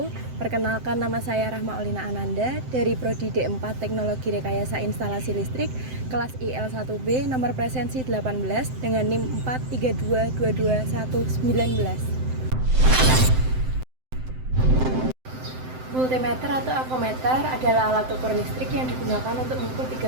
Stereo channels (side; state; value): left; late; 7.8 ms